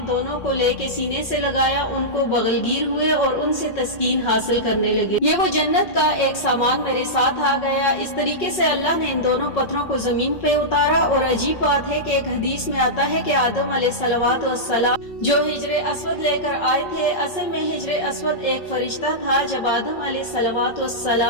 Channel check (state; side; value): late; right; 5.4 ms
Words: दोनों को लेके सीने से लगाया, उनको बगलगीर हुए और उनसे तस्कीन हासिल करने लगे। ये वो जन्नत का एक सामान मेरे साथ आ गया। इस तरीके से अल्लाह ने इन दोनों पत्थरों को जमीन पे उतारा। और अजीब बात है कि एक हदीस में आता है कि आदम अलैहिस्सलाम जो हिजरे अस्वद लेकर आए थे, असल में हिजरे अस्वद एक फरिश्ता था। जब आदम